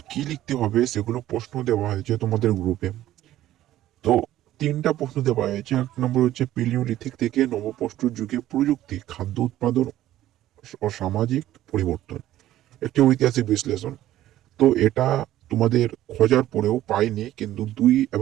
কি লিখতে হবে সেগুলো প্রশ্ন দেওয়া হয়েছে তোমাদের গ্রুপে। তো তিনটা প্রশ্ন দেওয়া হয়েছে। এক নম্বর হচ্ছে প্যালিওলিথিক থেকে নবপ্রস্তর যুগে প্রযুক্তি, খাদ্য উৎপাদন ও সামাজিক পরিবর্তন, একটি ঐতিহাসিক বিশ্লেষণ। তো এটা তোমাদের খোঁজার পরেও পাইনি, কিন্তু 2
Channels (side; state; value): left; quieter; 13.8 dB